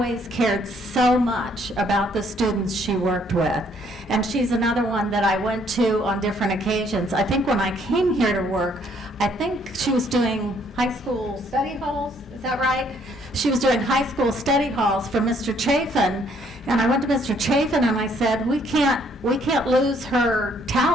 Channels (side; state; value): both; normal; correlation 0.66